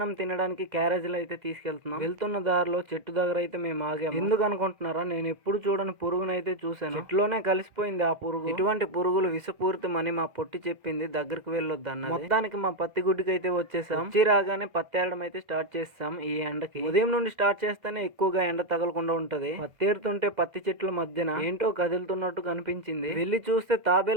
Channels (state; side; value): late; left; 2.1 ms